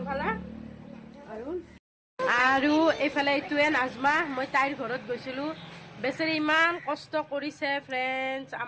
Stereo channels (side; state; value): both; identical; correlation 1.00